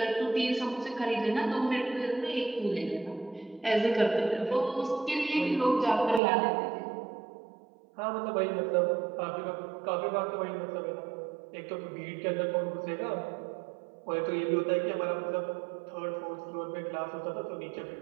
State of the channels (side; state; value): left; drops out; at 6.2 s